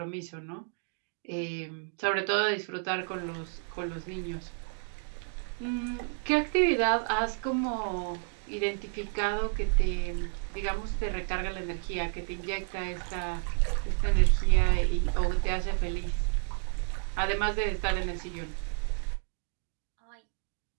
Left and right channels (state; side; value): silent; left; 57 dB below the other